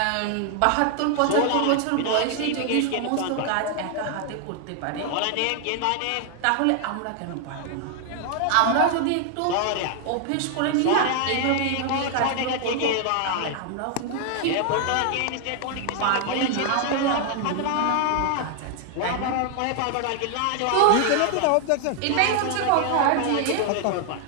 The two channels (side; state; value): both; different; correlation 0.00